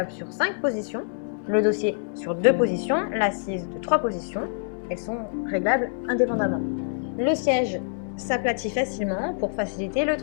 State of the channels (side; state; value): right; silent; digital silence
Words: sur 5 positions, le dossier sur 2 positions, l'assise de 3 positions. Elles sont réglables indépendamment. Le siège s'aplatit facilement pour faciliter le